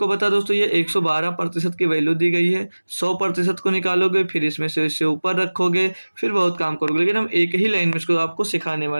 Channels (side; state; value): both; inverted; correlation -1.00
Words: बता दोस्तों ये 112% की वैल्यू दी गई है। 100% को निकालोगे, फिर इसमें से इससे ऊपर रखोगे, फिर बहुत काम करोगे, लेकिन हम एक ही लाइन में इसको आपको सिखाने